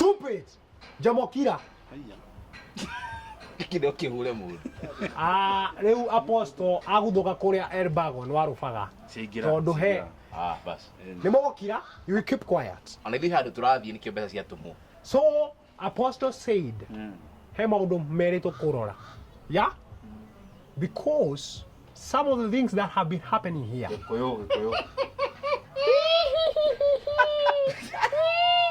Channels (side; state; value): both; identical; correlation 1.00